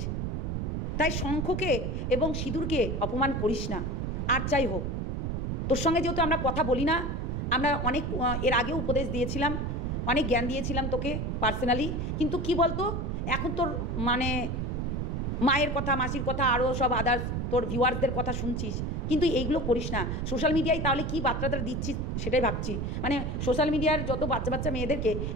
তাই শঙ্খকে এবং সিঁদুরকে অপমান করিস না। আর যাই হোক, তোর সঙ্গে যেহেতু আমরা কথা বলি না, আমরা অনেক এর আগেও উপদেশ দিয়েছিলাম, অনেক জ্ঞান দিয়েছিলাম তোকে পার্সোনালি, কিন্তু কি বলতো, এখন তোর মানে মায়ের কথা, মাসির কথা, আরও সব আদার্স তোর ভিউয়ার্সদের কথা শুনছিস, কিন্তু এইগুলো করিস না। সোশ্যাল মিডিয়ায় তাহলে কী বার্তাটা দিচ্ছিস সেটাই ভাবছি, মানে সোশ্যাল মিডিয়ার যত বাচ্চা মেয়েদেরকে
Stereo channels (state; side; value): noise; right; rumble, 1 dB below the sound